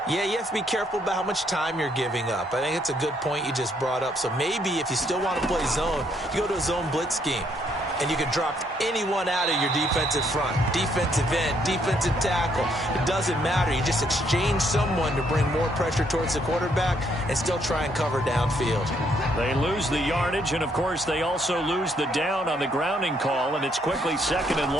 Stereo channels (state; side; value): normal; both; correlation 0.70